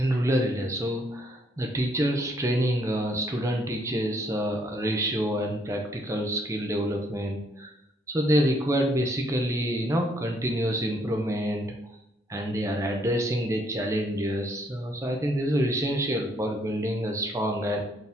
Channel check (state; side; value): normal; both; correlation 0.69